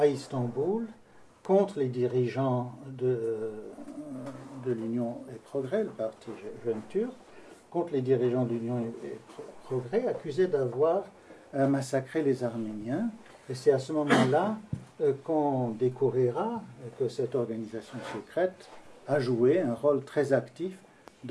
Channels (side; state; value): both; identical; correlation 1.00